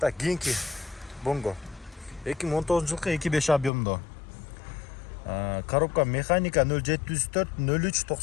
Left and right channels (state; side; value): drops out; right; at 3.7 s